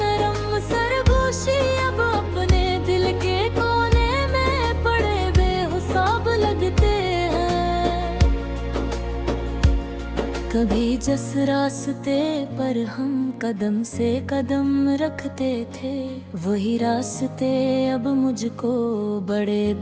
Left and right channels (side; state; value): both; identical; correlation 1.00